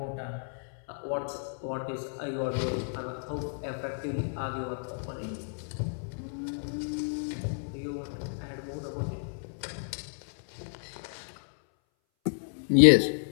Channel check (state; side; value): silent; right; 57 dB below the other